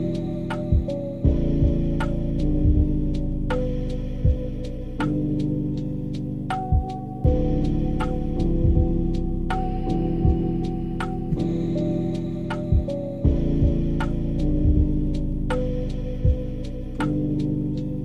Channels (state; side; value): identical; both; correlation 1.00